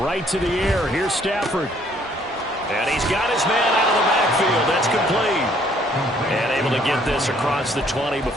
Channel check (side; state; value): both; normal; correlation 0.63